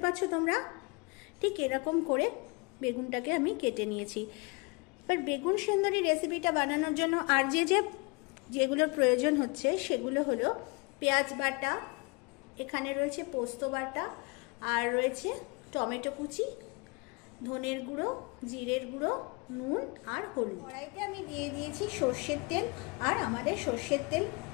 পাচ্ছ তোমরা? ঠিক এরকম করে বেগুনটাকে আমি কেটে নিয়েছি। এবার বেগুন সুন্দরী রেসিপিটা বানানোর জন্য আর যেগুলোর প্রয়োজন হচ্ছে সেগুলো হলো পেঁয়াজ বাটা, এখানে রয়েছে পোস্ত বাটা, আর রয়েছে টমেটো কুচি, ধনের গুঁড়ো, জিরের গুঁড়ো, নুন আর হলুদ। কড়াইতে আমি দিয়ে দিয়েছি সর্ষের তেল, আর আমাদের সর্ষের তেল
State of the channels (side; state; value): right; quieter; 28.9 dB